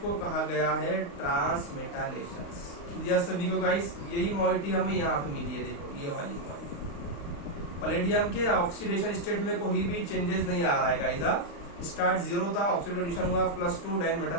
को कहा गया है ट्रांसमेटालेशन। क्लियर सभी को गाइस? यही मॉइटी हमें यहाँ पे मिली है, देखो ये वाली मॉइटी। पैलेडियम के ऑक्सीडेशन स्टेट में कोई भी चेंजेस नहीं आ रहा है गाइस। स्टार्ट 0 था, ऑक्सीडेशन हुआ +2, देन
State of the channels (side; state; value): right; late; 35 ms